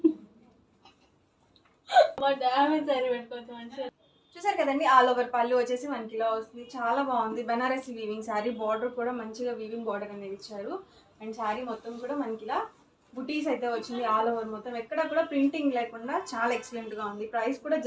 చూసారు కదండి, ఆల్ ఓవర్ పళ్ళు వచ్చేసి మనకి ఇలా వస్తుంది, చాలా బాగుంది. బనారసి వీవింగ్ శారీ, బార్డర్ కూడా మంచిగా వీవింగ్ బార్డర్ అనేది ఇచ్చారు. అండ్ శారీ మొత్తం కూడా మనకి ఇలా బుటీస్ అయితే వచ్చింది. ఆల్ ఓవర్ మొత్తం ఎక్కడ కూడా ప్రింటింగ్ లేకుండా చాలా ఎక్సలెంట్ గా ఉంది. ప్రైస్ కూడా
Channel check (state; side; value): identical; both; correlation 1.00